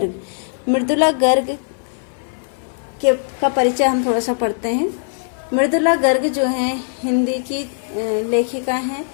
मृदुला गर्ग का परिचय हम थोड़ा सा पढ़ते हैं। मृदुला गर्ग जो हैं हिंदी की लेखिका हैं।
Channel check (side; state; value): right; silent; 56 dB below the other